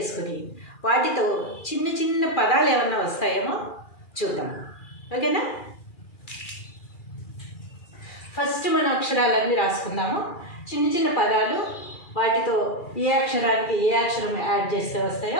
వాటితో చిన్న చిన్న పదాలు ఏమన్నా వస్తాయేమో చూద్దాం. ఓకేనా? ఫస్ట్ మన అక్షరాలన్నీ రాసుకుందాము. చిన్న చిన్న పదాలు, వాటితో ఏ అక్షరానికి ఏ అక్షరం యాడ్ చేస్తే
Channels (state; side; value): late; right; 2.4 ms